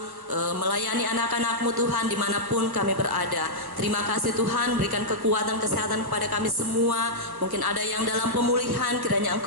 melayani anak-anakmu Tuhan dimanapun kami berada. Terima kasih Tuhan, berikan kekuatan kesehatan kepada kami semua. Mungkin ada yang dalam pemulihan, kiranya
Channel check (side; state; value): left; late; 1.1 ms